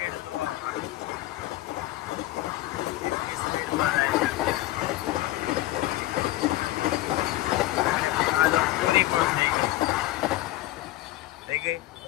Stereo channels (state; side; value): quieter; right; 17.1 dB